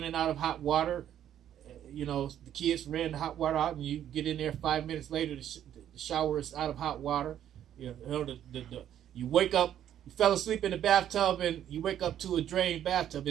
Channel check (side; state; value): left; quieter; 10.7 dB